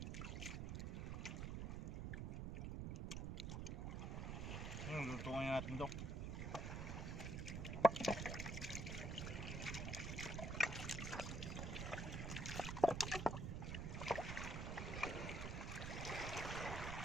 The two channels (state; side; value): noise; right; rumble, 2 dB below the sound